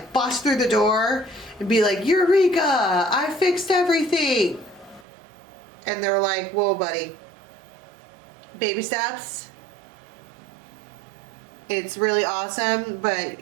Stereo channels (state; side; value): drops out; left; at 5.1 s